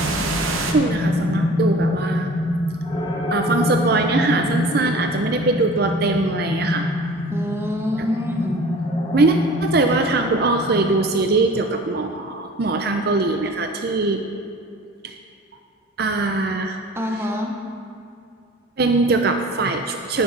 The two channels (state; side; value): normal; both; correlation 0.43